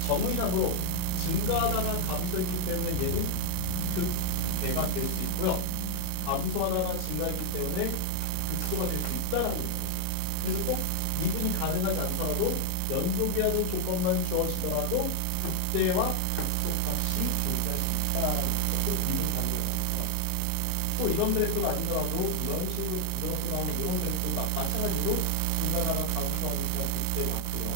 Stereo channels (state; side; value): different; both; correlation 0.01